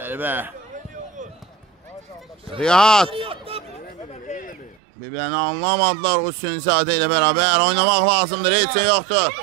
Rihat. Bir-birini anlamadılar. Hüseyinzadə ilə bərabər oynamaq lazımdır. Heç şey yoxdur.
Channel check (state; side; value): drops out; left; at 4.8 s